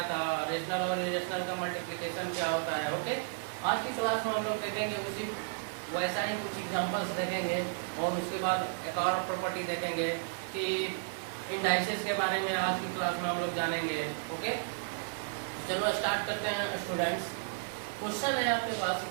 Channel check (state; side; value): silent; left; digital silence